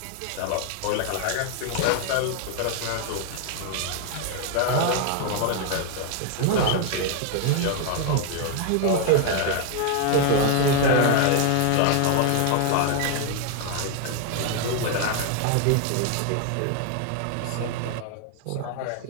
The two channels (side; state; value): both; different; correlation 0.00